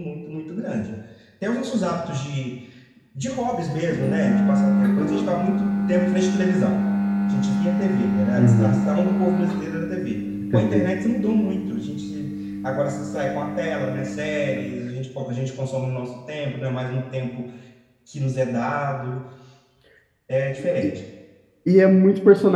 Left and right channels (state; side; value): identical; both; correlation 1.00